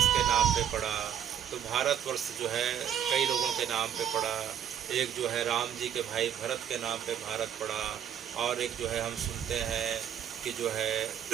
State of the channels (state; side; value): quieter; left; 9.4 dB